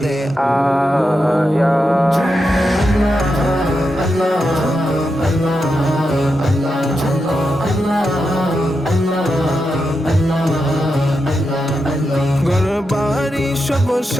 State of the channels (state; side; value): normal; both; correlation 0.87